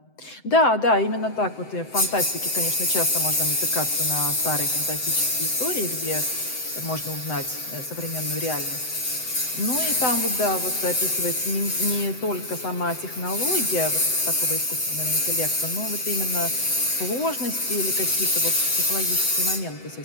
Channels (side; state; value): right; late; 7.9 ms